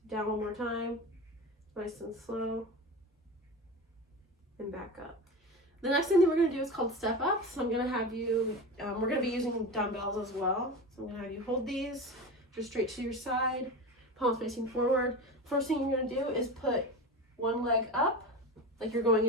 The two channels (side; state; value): both; normal; correlation 0.26